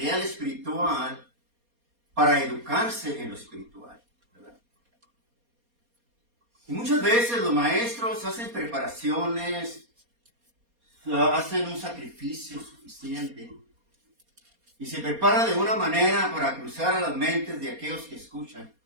espiritual para educarse en lo espiritual, ¿verdad? Y muchas veces los maestros hacen preparaciones, hacen un sacrificio suficiente y se prepara de una manera para cruzar a las mentes de aquellos que escuchan,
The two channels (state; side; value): late; left; 4.2 ms